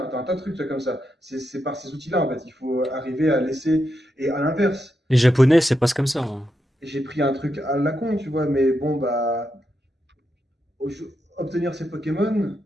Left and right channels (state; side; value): normal; both; correlation 0.84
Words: tas de trucs comme ça. C'est par ces outils-là, en fait. Il faut arriver à laisser. Et à l'inverse, Les Japonais, c'est presque comme ça, hein. j'ai pris un truc à la con, tu vois, mais bon, bah, obtenir ces Pokémon,